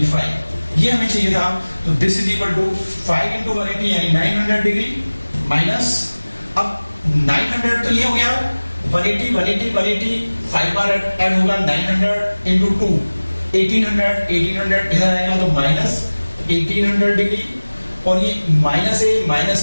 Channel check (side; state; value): both; inverted; correlation -1.00